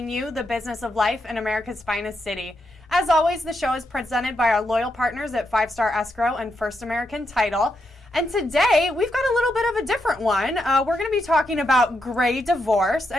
you the business of life in America's finest city. As always, the show is presented by our loyal partners at 5 Star Escrow and First American Title. And today, we've got a little bit of a different one. We're going to be talking about gray divorce.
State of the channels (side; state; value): both; normal; correlation 0.82